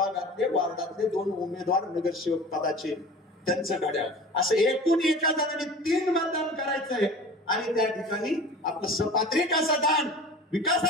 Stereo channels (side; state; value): both; normal; correlation 0.39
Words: वार्डातले 2 उमेदवार नगरसेवक पदाचे त्यांचं घड्याळ असं एकूण एका जणांनी 3 मतदान करायचंय. आणि त्या ठिकाणी आपलं सपात्रिक असं दान